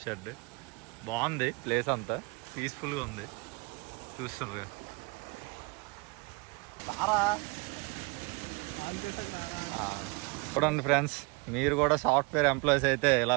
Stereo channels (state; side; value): quieter; left; 29.3 dB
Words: షెడ్ బాగుంది. ప్లేస్ అంతా పీస్ఫుల్గా ఉంది. చూస్తున్నారు చూడండి ఫ్రెండ్స్, మీరు కూడా సాఫ్ట్వేర్ ఎంప్లాయీస్ అయితే